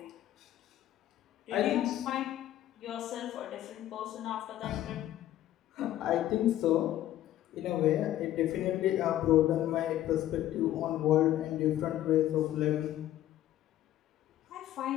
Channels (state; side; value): quieter; right; 13.1 dB